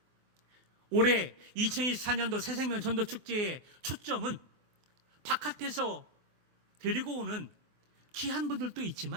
올해 2024년도 새생명 전도축제의 초점은 바깥에서 데리고 오는 귀한 분들도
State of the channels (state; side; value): late; left; 23 ms